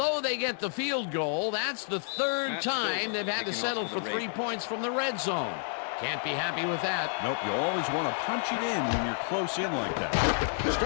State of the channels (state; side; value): silent; right; digital silence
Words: they get the field goal, that's the third time they've had to settle for 3 points from the red zone. Can't be happy with that. Nope, you always want to punch it in when you're close in like that.